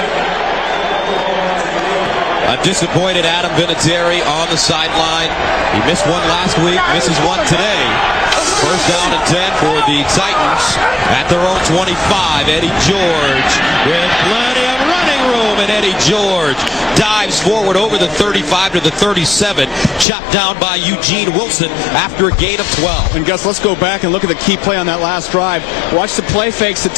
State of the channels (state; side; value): drops out; right; at 20.1 s